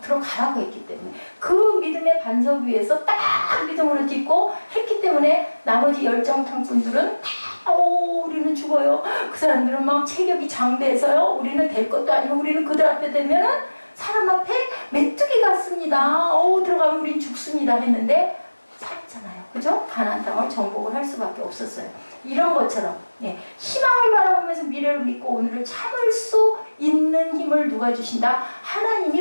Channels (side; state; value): both; inverted; correlation -1.00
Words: 들어가라고 했기 때문에. 그 믿음의 반석 위에서 딱 믿음으로 딛고 했기 때문에 나머지 열정탕분들은 다 우리는 죽어요. 그 사람들은 막 체격이 장대해서요. 우리는 될 것도 아니고 우리는 그들 앞에 되면은 사람 앞에 메뚜기 같습니다. 들어가면 우린 죽습니다 했는데 살았잖아요. 그죠? 가나안 땅을 정복을 할 수밖에 없었어요. 이런 것처럼 희망을 바라보면서 미래를 믿고 오늘을 참을 수 있는 힘을 누가 주신다?